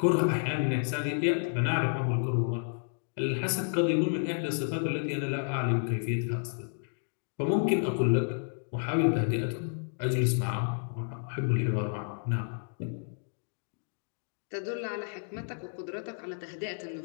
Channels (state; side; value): silent; right; digital silence